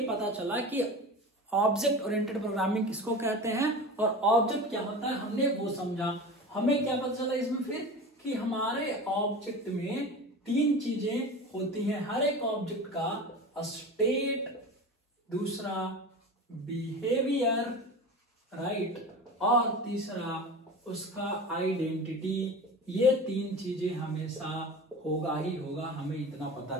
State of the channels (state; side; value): normal; both; correlation 0.32